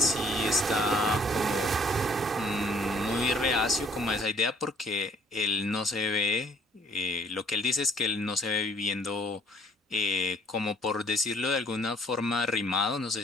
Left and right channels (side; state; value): both; normal; correlation 0.59